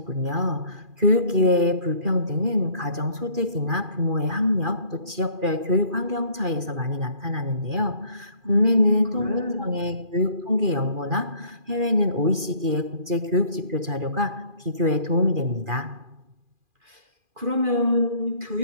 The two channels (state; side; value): late; left; 2.4 ms